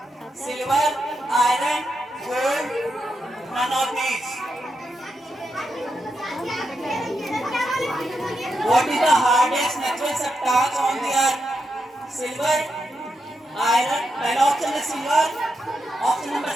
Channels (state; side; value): normal; both; correlation 0.85